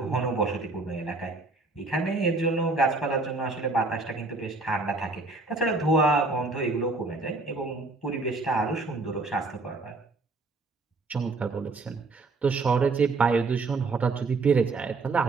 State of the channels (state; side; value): quieter; left; 3.5 dB